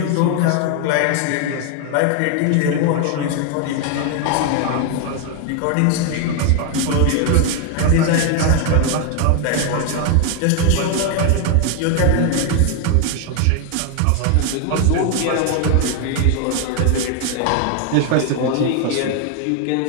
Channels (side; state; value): both; different; correlation 0.01